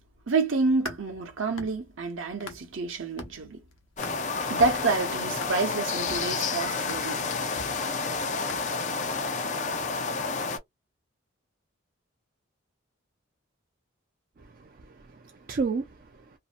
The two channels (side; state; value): both; normal; correlation -0.04